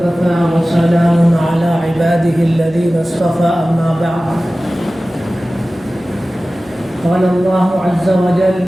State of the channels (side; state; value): right; noise; hum, 28 dB below the sound